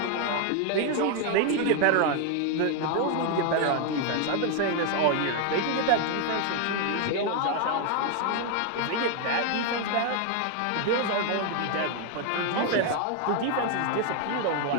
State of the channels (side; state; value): both; different; correlation 0.00